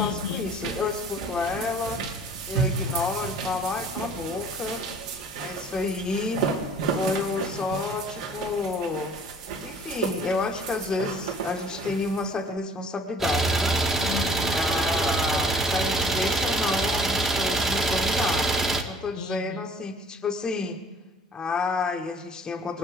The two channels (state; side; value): normal; both; correlation 0.52